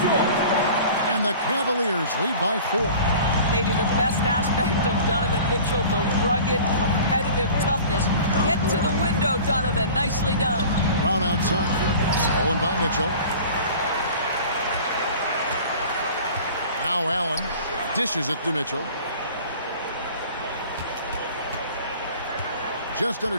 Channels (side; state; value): both; inverted; correlation -0.43